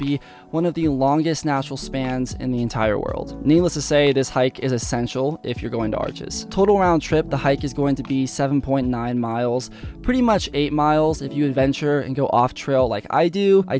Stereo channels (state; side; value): identical; both; correlation 1.00